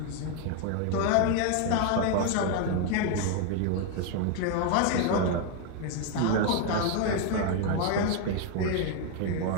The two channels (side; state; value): both; different; correlation 0.01